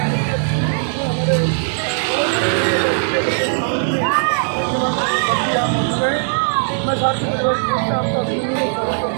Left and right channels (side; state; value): left; silent; 58 dB below the other